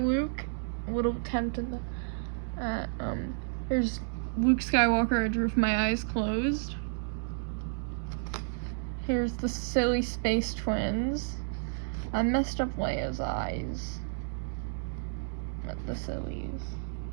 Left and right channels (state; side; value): silent; left; digital silence